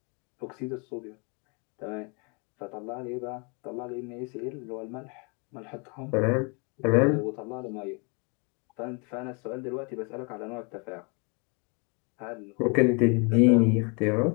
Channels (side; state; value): right; quieter; 33.5 dB